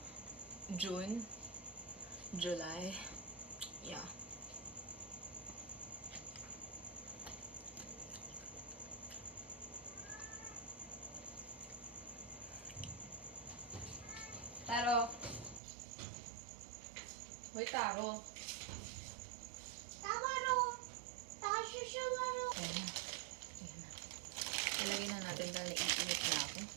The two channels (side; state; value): left; drops out; at 15.6 s